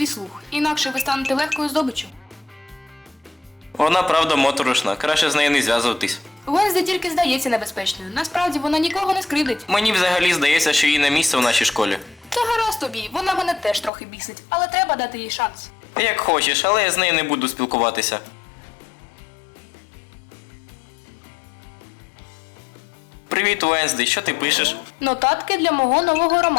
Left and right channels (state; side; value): drops out; right; at 13.9 s